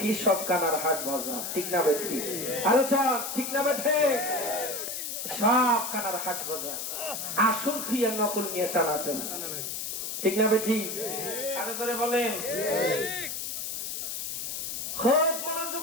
সব কানার হাট বাজার, ঠিক না ভাই? ঠিক। আলোচনা ঠিক না ভাই? ঠিক। সব কানার হাট বাজার, আসল তুই আর নকল নিয়ে টানাটানি, ঠিক না ভাই? ঠিক। আরো ধরে বলেন। খুব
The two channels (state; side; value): noise; left; hiss, 4 dB below the sound